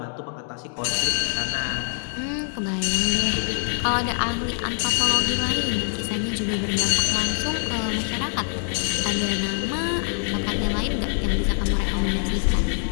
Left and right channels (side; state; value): right; silent; 62 dB below the other